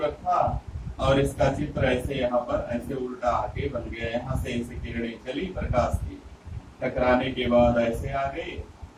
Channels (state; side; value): identical; both; correlation 1.00